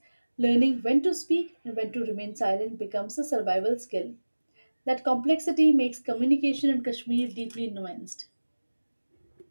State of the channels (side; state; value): both; inverted; correlation -1.00